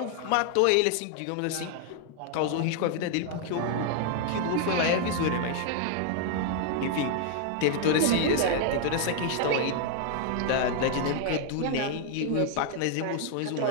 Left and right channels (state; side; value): different; both; correlation 0.00